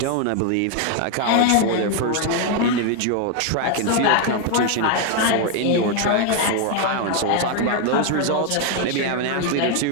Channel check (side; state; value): both; different; correlation 0.01